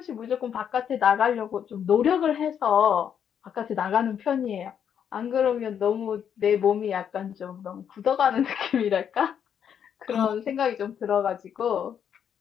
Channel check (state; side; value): quieter; right; 8.4 dB